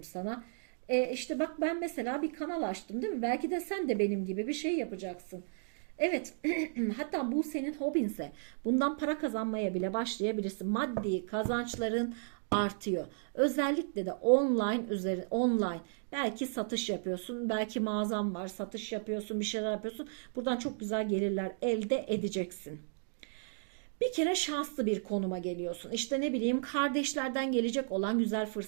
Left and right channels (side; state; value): left; silent; digital silence